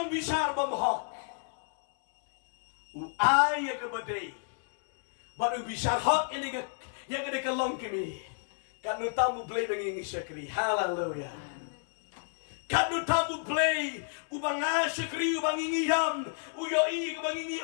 bisar bumhok uay ka baday baru bisar hok ini ka yang ada kalong kami kanu tamu BLEI bengingi syakri hallelujah kanu tamu BLEI ubang syakri ubang ingiyam uyoi ubang ingi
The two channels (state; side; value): silent; right; 57 dB below the other